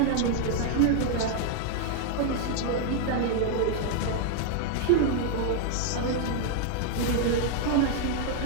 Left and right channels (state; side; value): different; both; correlation 0.00